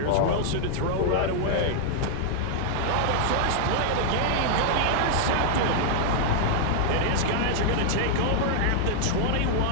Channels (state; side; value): different; both; correlation -0.01